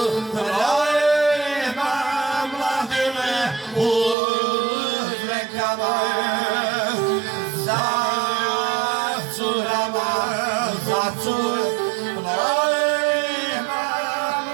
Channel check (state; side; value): drops out; left; at 4.2 s